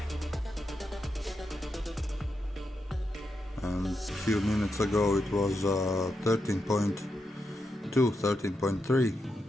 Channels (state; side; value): normal; both; correlation 0.85